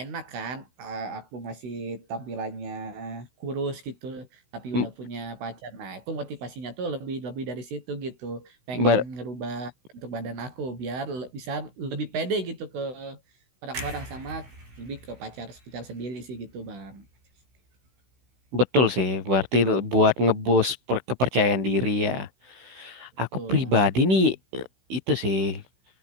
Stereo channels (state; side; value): late; left; 16 ms